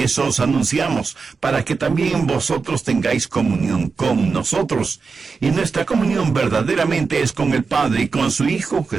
os anunciamos, para que también vosotros tengáis comunión con nosotros. Y nuestra comunión verdaderamente es con el Padre y con su Hijo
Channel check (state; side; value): quieter; left; 4.8 dB